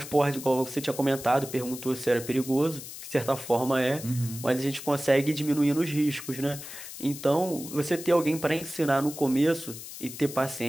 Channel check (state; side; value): noise; left; hiss, 12 dB below the sound